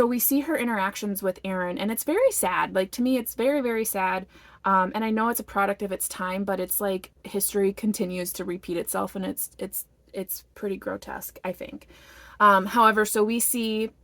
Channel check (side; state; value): both; identical; correlation 1.00